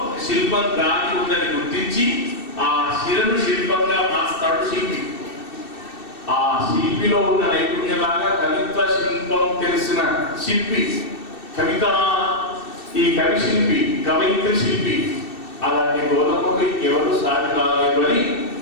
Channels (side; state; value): right; late; 2.7 ms